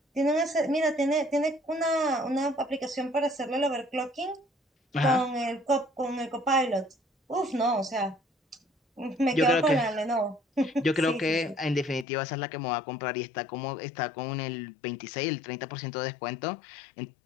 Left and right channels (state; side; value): drops out; right; at 12.1 s